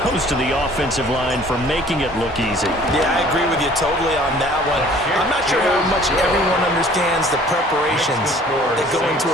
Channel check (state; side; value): normal; both; correlation 0.53